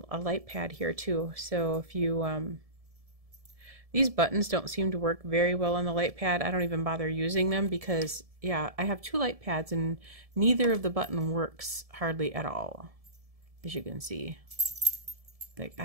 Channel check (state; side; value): late; left; 1.7 ms